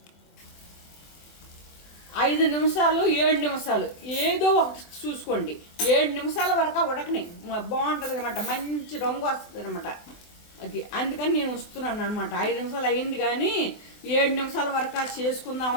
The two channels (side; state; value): right; late; 24 ms